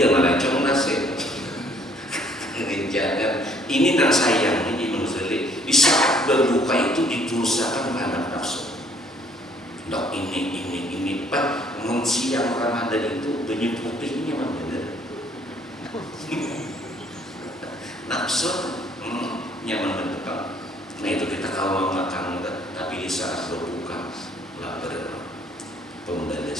malah cong nasi. Jangan. Ini yang sayangnya di Ghazali. Di saat berbuka itu ditusakan anak nafsu. Dok ini Pak. Siang Ramadan itu banyak putihnya benar. Nafsu nyaman betul. Nah itu kita kalau makan tapi di saat berbuka lapar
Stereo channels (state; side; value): normal; both; correlation 0.62